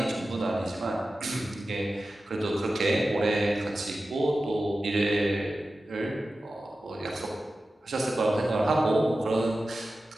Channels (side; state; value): both; normal; correlation 0.94